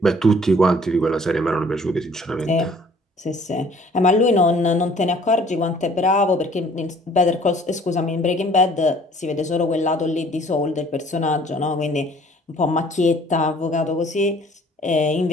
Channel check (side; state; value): both; normal; correlation 0.55